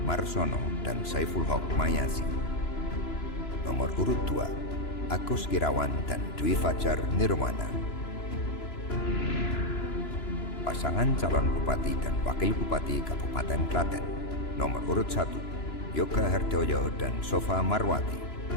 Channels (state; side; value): late; right; 3.0 ms